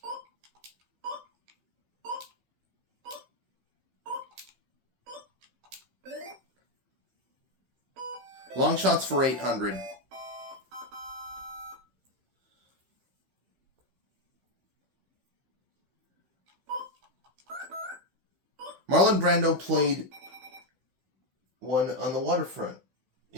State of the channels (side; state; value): left; late; 15 ms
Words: Long shots for 800. Marlon Brando played one on the waterfront.